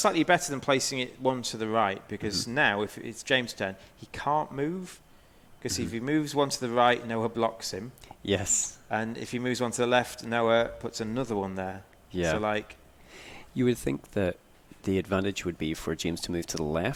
better than placing it one to the right, because now if it's James' turn, he can't move. Because if he moves one to the right, Noah blocks him. Yes. And if he moves one to the left, Noah puts another one there. Yeah. So you would think that the advantage would be for James to move to the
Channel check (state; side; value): identical; both; correlation 1.00